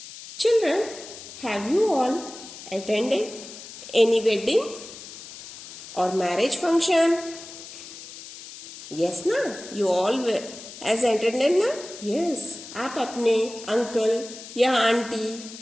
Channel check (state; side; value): noise; left; hiss, 14 dB below the sound